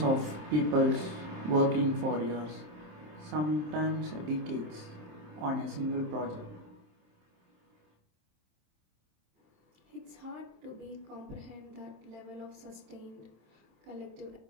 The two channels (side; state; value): left; late; 27 ms